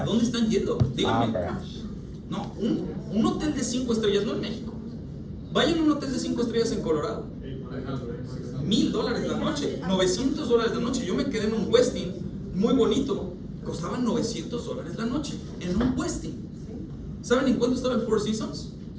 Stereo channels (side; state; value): both; identical; correlation 1.00